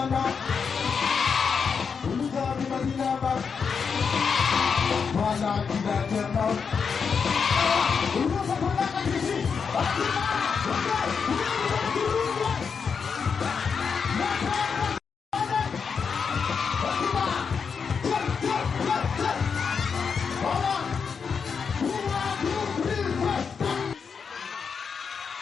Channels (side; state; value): right; quieter; 6.0 dB